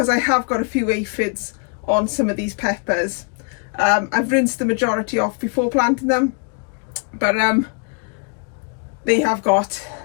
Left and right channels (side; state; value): right; quieter; 38.2 dB